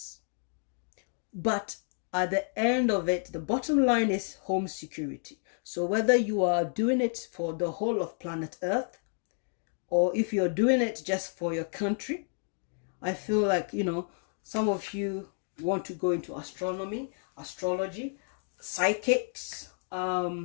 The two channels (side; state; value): right; silent; 57 dB below the other